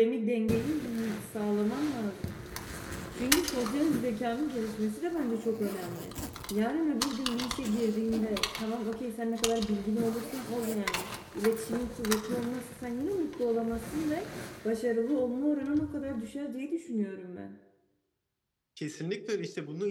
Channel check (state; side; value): identical; both; correlation 1.00